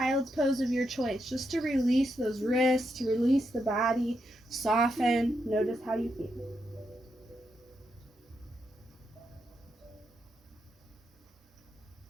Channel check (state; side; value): normal; both; correlation 0.82